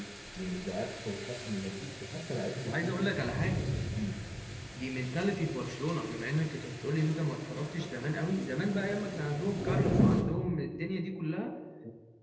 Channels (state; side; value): identical; both; correlation 1.00